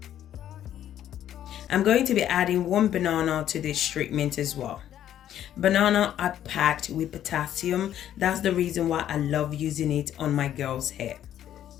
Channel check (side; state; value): right; quieter; 11.1 dB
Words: I'm going to be adding 1 banana to this treatment as well. Banana are packed with potassium. That's the reason why I love using it on my girl's hair.